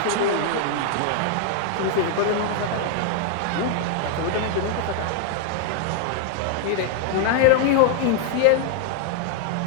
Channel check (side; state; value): both; different; correlation -0.01